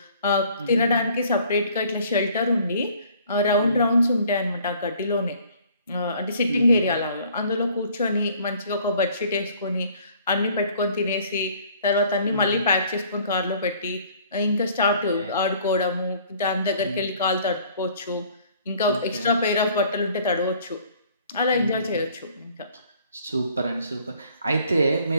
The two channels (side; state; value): both; inverted; correlation -0.56